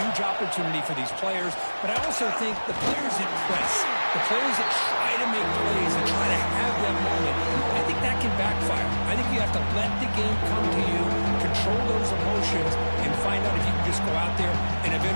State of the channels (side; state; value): both; inverted; correlation -1.00